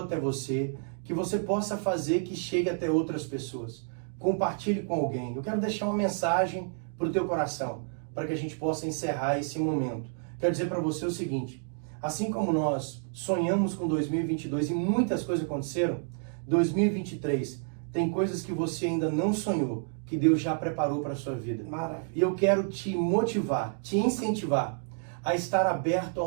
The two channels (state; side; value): silent; left; 58 dB below the other